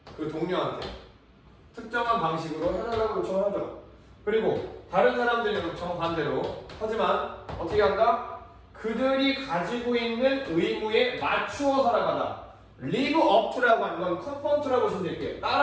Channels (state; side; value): identical; both; correlation 1.00